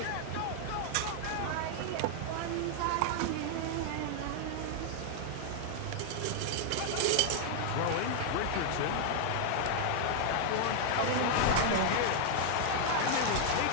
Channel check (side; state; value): both; different; correlation 0.00